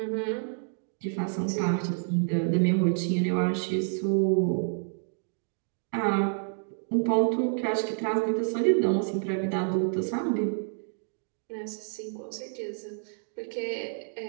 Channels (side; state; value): left; silent; digital silence